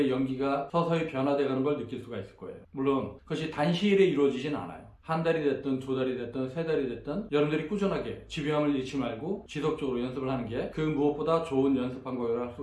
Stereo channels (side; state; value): both; identical; correlation 1.00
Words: 연기가 서서히 변화되어가는 걸 느낄 수가 있을 거예요. 물론 그것이 단시일에 이루어지진 않아요. 한 달이 됐든 두 달이 됐든 세 달이 됐든 여러분들이 꾸준하게 지루함을 잃지 말고 지속적으로 연습을 하는 게 그 무엇보다 좋은 연습 방법이라고 할